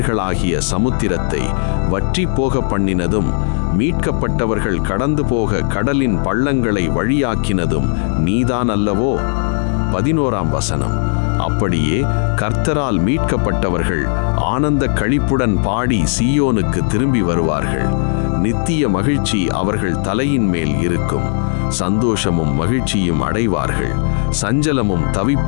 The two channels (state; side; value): silent; right; digital silence